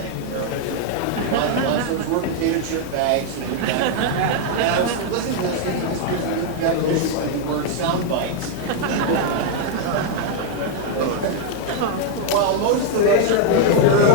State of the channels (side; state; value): both; different; correlation 0.00